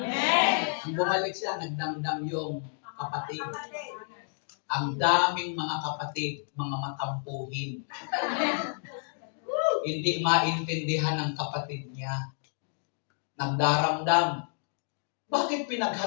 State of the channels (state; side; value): silent; right; digital silence